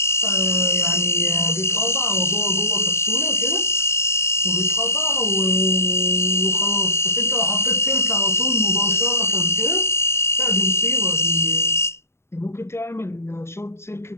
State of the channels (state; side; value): late; right; 0.13 ms